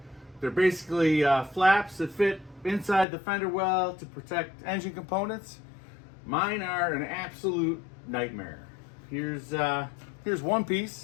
They're basically flaps that fit inside the fender well to protect engine components. Mine are an absolute nightmare. Here's one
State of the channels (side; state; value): right; drops out; at 3.1 s